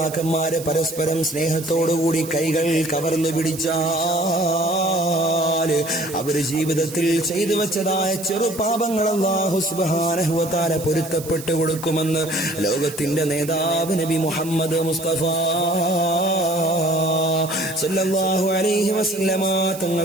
പരസ്പരം സ്നേഹത്തോടുകൂടി കൈകൾ കവർന്നു പിടിച്ചാൽ അവര് ജീവിതത്തിൽ ചെയ്തു വെച്ചതായ ചെറുപാപങ്ങൾ അല്ലാഹു സുബ്ഹാനഹു വ തആല പൊരുത്തപ്പെട്ടു കൊടുക്കുമെന്ന് ലോകത്തിന്റെ നേതാവ് നബി മുഹമ്മദ് മുസ്തഫ സല്ലല്ലാഹു അലൈഹി വസല്ലമ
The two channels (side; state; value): right; noise; hiss, 14 dB below the sound